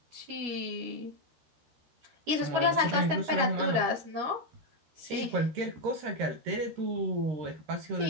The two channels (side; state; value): left; late; 13 ms